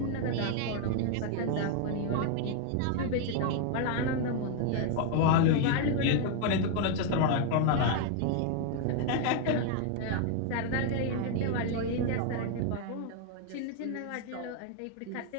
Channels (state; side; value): different; both; correlation 0.00